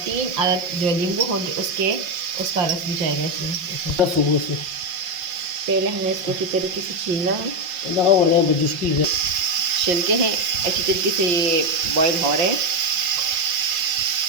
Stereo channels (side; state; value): left; late; 5.7 ms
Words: 3 अदद जो नींबू होंगे उसका रस भी जाएगा इसमें। पहले हमें इसको अच्छी तरीके से छीलना है। छिलके हैं अच्छी तरीके से ये बॉईल हो रहे हैं।